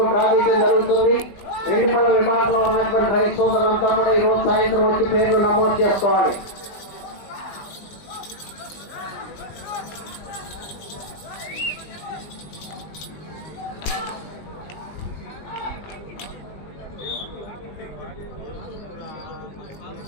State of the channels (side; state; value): right; late; 20 ms